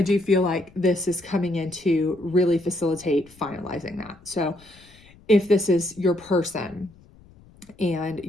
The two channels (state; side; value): noise; left; rumble, 26 dB below the sound